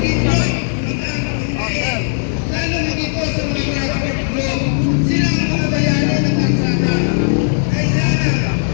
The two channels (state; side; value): silent; right; 58 dB below the other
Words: nyo ang aming hinahin. Lalo higit po sa mga graduate group, silang mga bayani ng kalsada. Kailangan